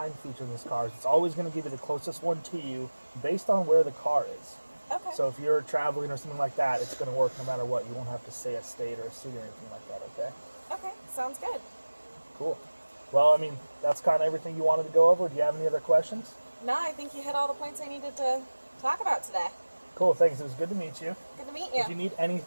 feature in this car is it's always going to give you the closest one to you based on where the car is. Okay. So if you're traveling or something like that, it's going to work no matter what. You won't have to say a state or a city or anything like that, okay? Okay. Sounds good. Cool. Well, I mean, that's kind of everything you wanted to go over. Do you have any other questions? No, I think you hit all the points I needed to talk about today. Cool, thanks. It was good to meet you. Good to meet If you you. need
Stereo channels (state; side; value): inverted; both; correlation -1.00